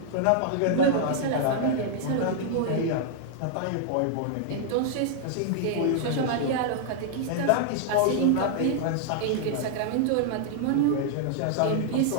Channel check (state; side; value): different; both; correlation -0.01